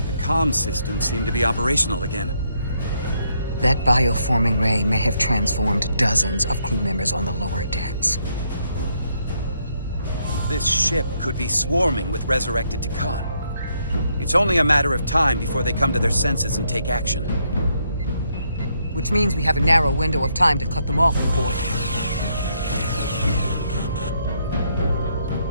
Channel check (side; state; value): both; inverted; correlation -0.75